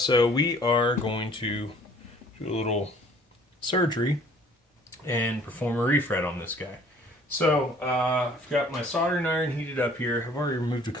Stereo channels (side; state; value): both; normal; correlation 0.55